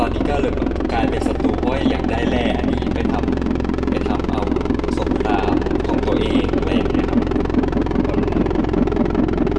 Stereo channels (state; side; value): identical; both; correlation 1.00